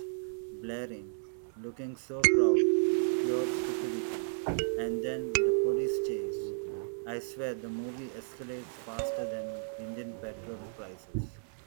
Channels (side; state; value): left; silent; 56 dB below the other